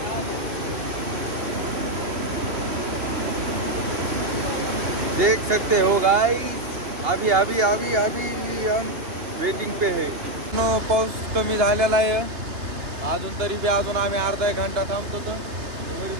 देख सकते हो गाइस, अभी अभी अभी अभी हम वेटिंग पे है. पाऊस कमी झालेला आहे अजून, तरी बी अजून आम्ही अर्धा 1 घंटा थांबतो तर घरी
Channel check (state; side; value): late; left; 2.9 ms